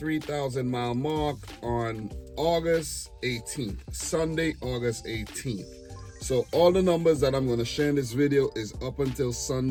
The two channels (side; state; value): both; identical; correlation 1.00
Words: mile mark on August 18th, Sunday, August 18th. So all the numbers that I'm going to share in this video is up until